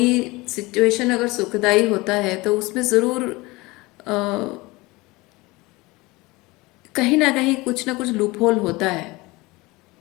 सिचुएशन अगर सुखदाई होता है तो उसमें ज़रूर कहीं ना कहीं कुछ ना कुछ लूप होल होता है।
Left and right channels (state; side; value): quieter; right; 22.4 dB